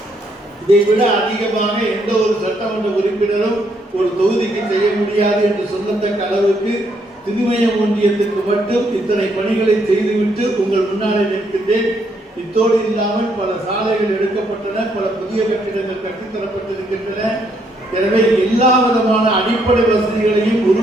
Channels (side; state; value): both; normal; correlation 0.72